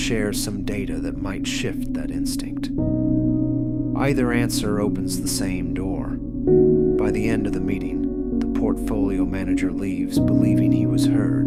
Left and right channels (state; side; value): identical; both; correlation 1.00